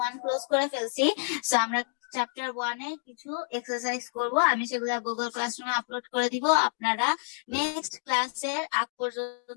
1 ক্লোজ করে ফেলছি, সো আমরা চ্যাপ্টার 1 এ কিছু এক্সারসাইজ করব, আমি সেগুলো গুগল ক্লাসরুমে আপলোড করে দিব, আপনারা নেক্সট ক্লাসের আগ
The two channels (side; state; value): right; silent; digital silence